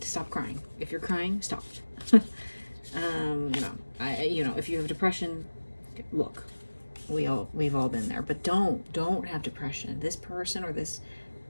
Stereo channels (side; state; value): both; inverted; correlation -1.00